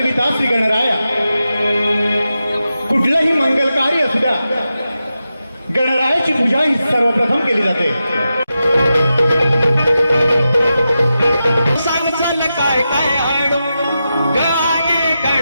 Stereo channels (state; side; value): inverted; both; correlation -0.90